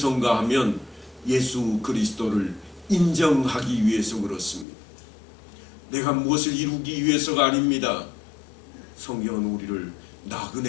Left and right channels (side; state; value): right; drops out; at 4.7 s